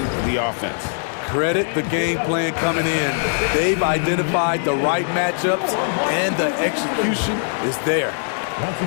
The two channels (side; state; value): right; silent; digital silence